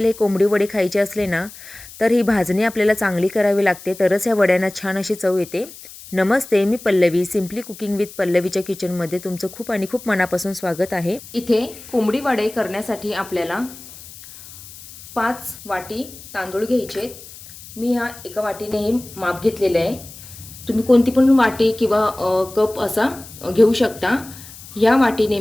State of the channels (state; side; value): noise; left; hiss, 17 dB below the sound